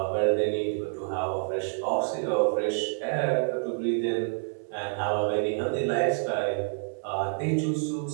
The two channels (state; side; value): silent; left; 59 dB below the other